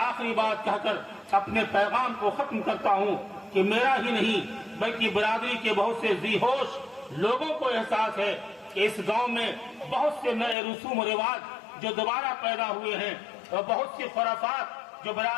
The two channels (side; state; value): right; drops out; at 10.6 s